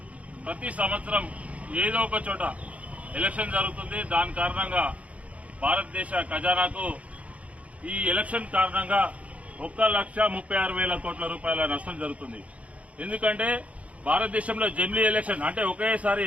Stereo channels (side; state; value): left; late; 0.066 ms